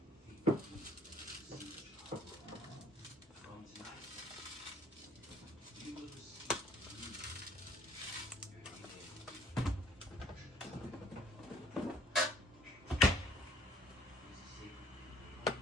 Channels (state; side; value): normal; both; correlation 0.59